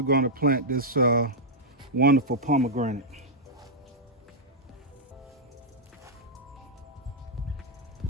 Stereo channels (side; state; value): both; normal; correlation -0.07